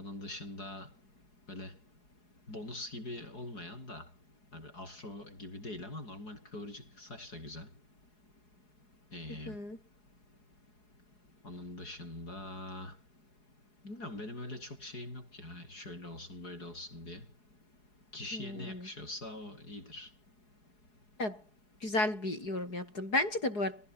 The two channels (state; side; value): late; right; 4.8 ms